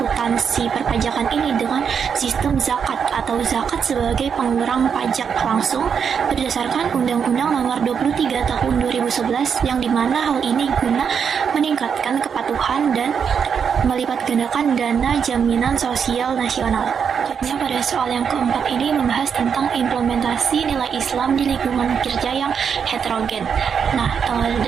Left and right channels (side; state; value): left; quieter; 6.9 dB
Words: perpajakan ini dengan sistem zakat atau zakat sebagai pengurang pajak langsung berdasarkan Undang-Undang Nomor 23 Tahun 2011, yang dimana hal ini guna meningkatkan kepatuhan dan melipat gandakan dana jaminan sosial nasional. Selanjutnya pada soal yang keempat ini membahas tentang implementasi nilai Islam di lingkungan kerja yang heterogen. Nah,